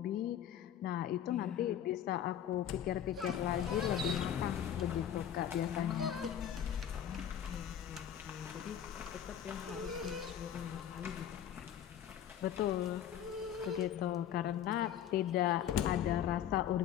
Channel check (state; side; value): quieter; right; 9.9 dB